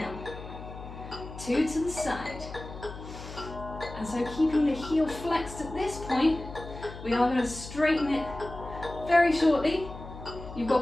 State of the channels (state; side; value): noise; left; hum, 12 dB below the sound